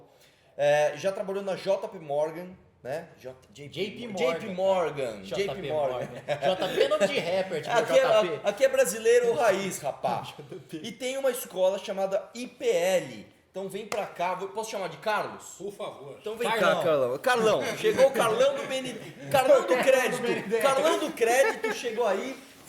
Já trabalhou na JP Morgan, né? JP Morgan. JP é nome de rapper, tipo JP. Aqui é brasileiro raiz, rapaz. E tem uma escola chamada IPL. Então vem pra cá. Posso chamar de Carlos? Por favor. Então vem cá, Carlão. Carlão. Chegou o Carlão do Carlão do Crédito. Carlão do Crédito chegou aí.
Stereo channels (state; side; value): identical; both; correlation 1.00